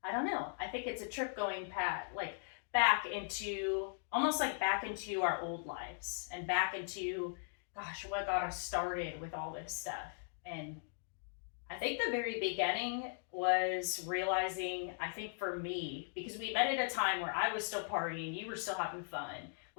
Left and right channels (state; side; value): silent; right; digital silence